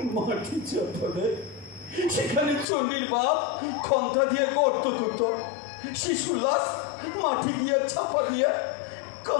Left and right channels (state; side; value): drops out; right; at 2.7 s